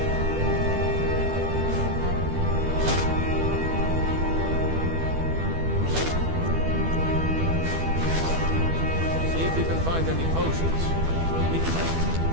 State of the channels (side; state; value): left; late; 12 ms